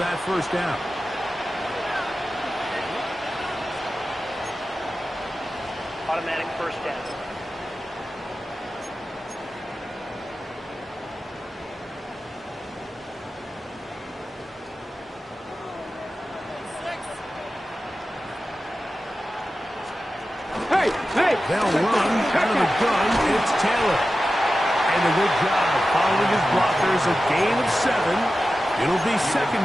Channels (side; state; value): both; normal; correlation 0.93